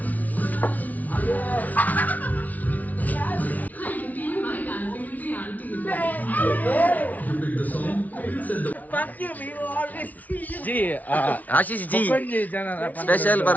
G Ashish ji special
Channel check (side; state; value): right; late; 0.075 ms